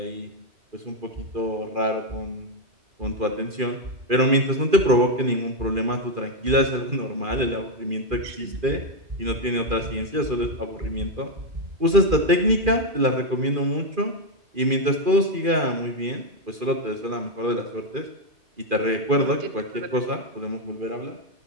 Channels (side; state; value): left; late; 2.4 ms